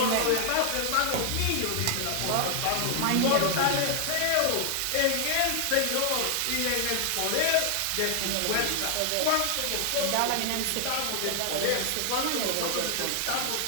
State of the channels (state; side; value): different; both; correlation 0.00